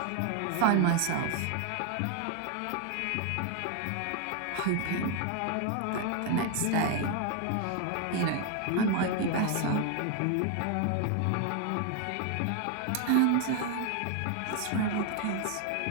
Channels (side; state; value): both; different; correlation 0.01